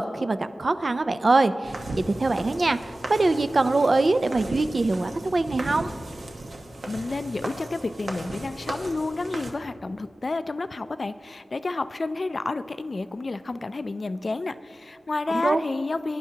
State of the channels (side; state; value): both; normal; correlation 0.95